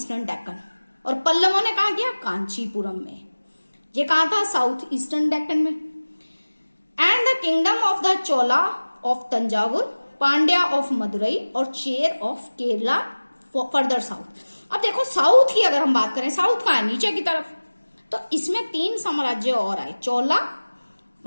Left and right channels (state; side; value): inverted; both; correlation -1.00